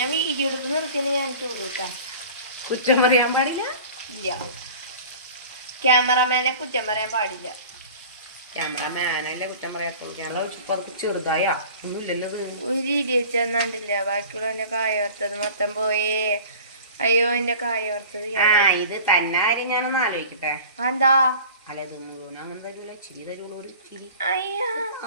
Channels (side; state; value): both; inverted; correlation -0.42